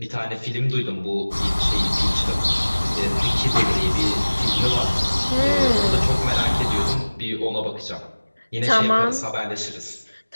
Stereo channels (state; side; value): inverted; both; correlation -1.00